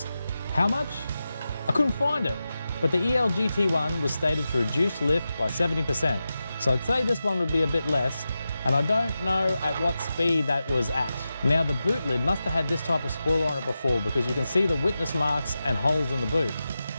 How much? I couldn't find it, but the EL GT1 was stated to reduce lift by 70%, so I'd say this one would be a bit less, and I don't know at what speed that was at. Now the boot lid must have had this type of spoiler on it before because you can see the witness marks and holes in the boot.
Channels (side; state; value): both; inverted; correlation -0.92